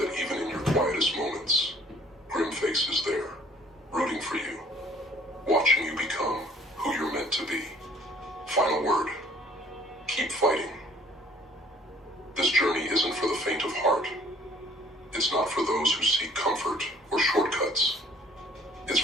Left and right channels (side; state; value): both; normal; correlation 0.56